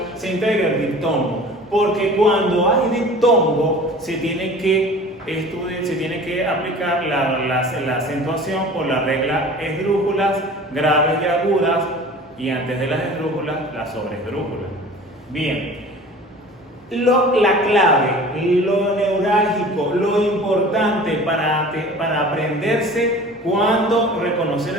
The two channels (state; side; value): normal; both; correlation 0.42